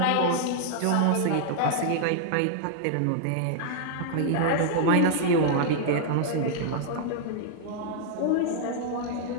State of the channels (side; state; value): both; different; correlation -0.01